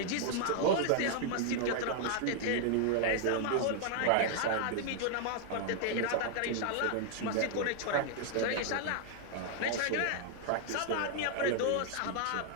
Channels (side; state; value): both; different; correlation 0.00